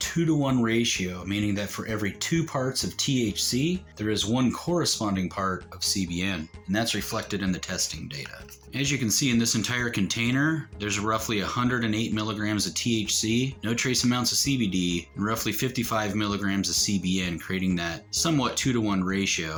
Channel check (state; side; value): identical; both; correlation 1.00